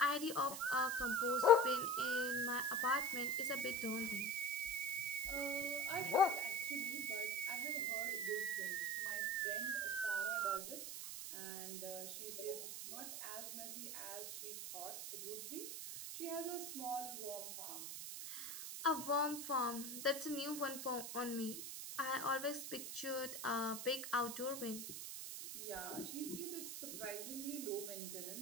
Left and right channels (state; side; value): noise; right; hiss, 6 dB below the sound